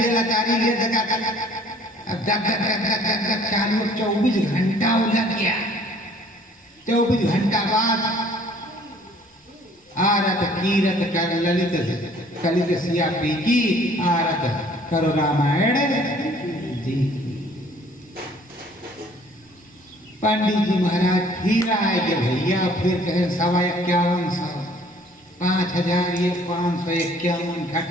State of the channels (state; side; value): normal; both; correlation 0.56